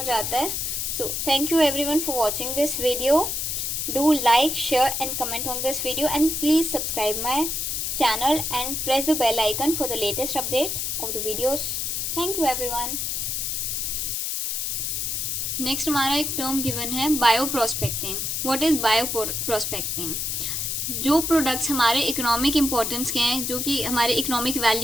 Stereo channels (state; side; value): noise; left; hiss, 1 dB below the sound